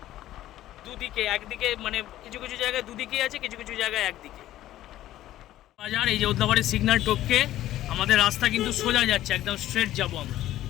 দুদিকে, একদিকে মানে কিছু কিছু জায়গায় দুদিকেই আছে, কিছু কিছু জায়গায় একদিকে বাজার। এই যে ওদলাবাড়ির সিগন্যাল টপকে আমাদের রাস্তা কিন্তু সোজা যাচ্ছে, একদম স্ট্রেট যাবো আমরা,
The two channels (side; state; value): right; quieter; 13.9 dB